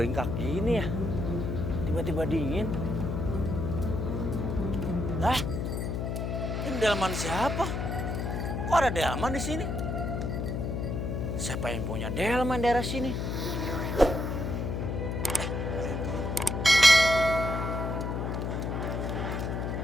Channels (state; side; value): noise; left; hum, 2 dB below the sound